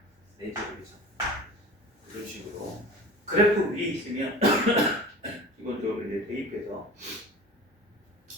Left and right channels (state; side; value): normal; both; correlation 0.37